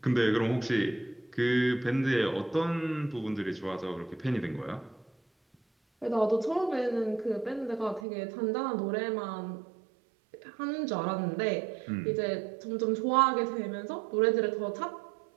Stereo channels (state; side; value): drops out; left; at 8.1 s